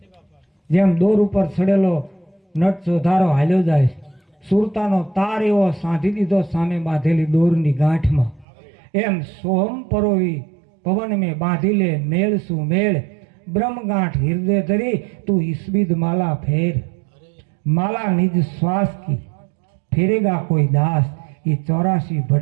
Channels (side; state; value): left; drops out; at 8.5 s